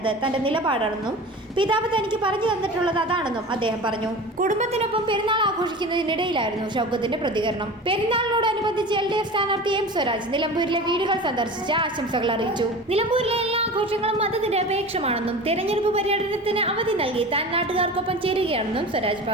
തന്റെ നിലപാടാണെന്നും പിതാവ് തനിക്ക് പറഞ്ഞു തന്നിട്ടുള്ളത് അതാണെന്നും അദ്ദേഹം പറഞ്ഞു. കുടുംബത്തിനൊപ്പം പെരുന്നാൾ ആഘോഷിക്കുന്നതിനിടയിലായിരുന്നു ഷൗക്കത്തിന്റെ പ്രതികരണം. പെരുന്നാളിനോടനുബന്ധിച്ച് LDF സ്ഥാനാർത്ഥി M സ്വരാജ് നിലമ്പൂരിലെ വീടുകൾ സന്ദർശിച്ച് ആശംസകൾ അറിയിച്ചു. നിലമ്പൂരിലെ എല്ലാ ആഘോഷങ്ങളും മതനിരപേക്ഷമാണെന്നും തെരഞ്ഞെടുപ്പ് പര്യടനത്തിന് അവധി നൽകി താൻ നാട്ടുകാർക്കൊപ്പം ചേരുകയാണെന്നും സ്വരാജ്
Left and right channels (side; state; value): both; normal; correlation 0.34